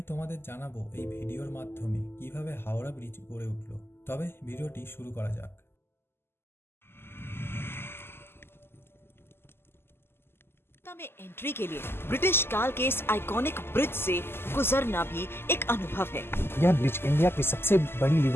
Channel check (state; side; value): late; right; 0.11 ms